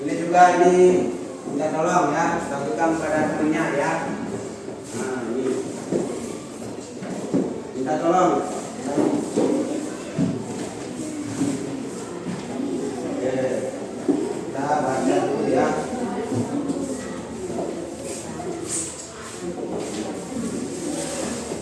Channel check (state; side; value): identical; both; correlation 1.00